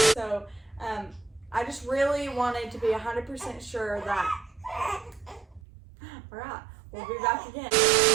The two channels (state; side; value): drops out; left; at 5.6 s